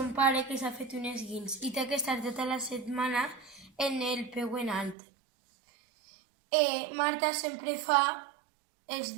pare que s'ha fet un esguins i té que estar tota la setmana en el peu en alt. Marta sempre fa els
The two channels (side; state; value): left; drops out; at 5.0 s